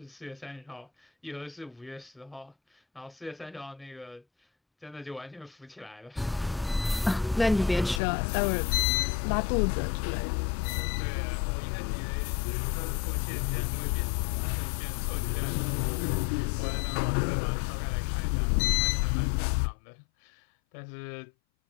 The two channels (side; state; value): right; drops out; at 8.0 s